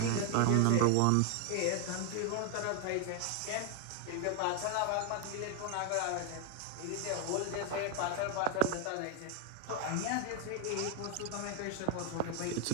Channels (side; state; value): both; different; correlation 0.00